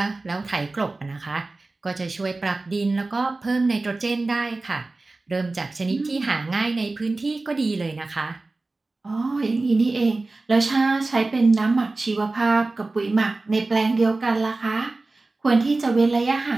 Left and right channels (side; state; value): left; quieter; 3.3 dB